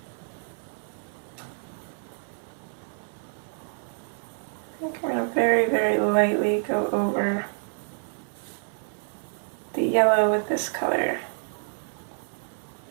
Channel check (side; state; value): left; silent; 59 dB below the other